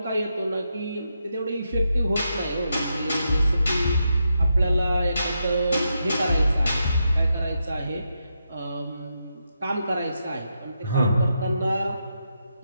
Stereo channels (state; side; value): inverted; both; correlation -0.84